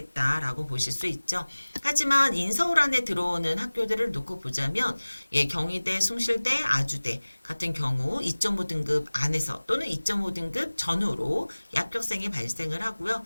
보실 수 있죠. 하지만 인서울 안에 들어오는 학교들을 놓고 보자면 예, 경희대, 숭실대, 아주대 같은 경우 2.5등급 안에서 또는 2.5등급 전후로 합격생이 발생을 하고요.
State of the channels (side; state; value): both; inverted; correlation -1.00